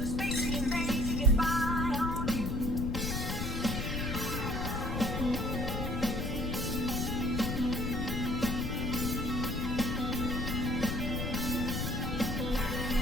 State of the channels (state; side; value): noise; left; rumble, 3 dB below the sound